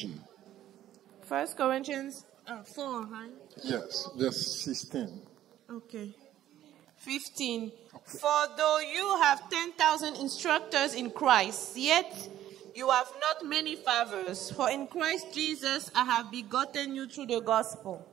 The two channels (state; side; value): quieter; left; 12.5 dB